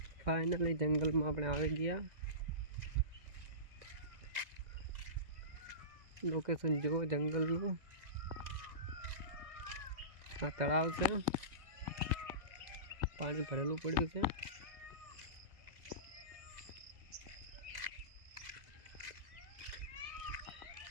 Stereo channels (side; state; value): left; late; 2.0 ms